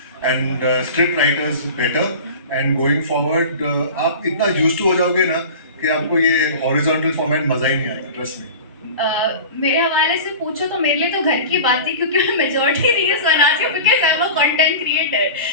and script writers better. And going forward, आप इतना used to हो जाओगे ना कि आपको ये horizontal format मजा ही नहीं आएगा, trust me. मेरे हवाले से पूछो तो मेरे लिए तो घर की बात थी, क्योंकि मैं मेजॉरिटी रील्स बनाती हूँ, because I am a content creator.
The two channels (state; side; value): inverted; both; correlation -0.35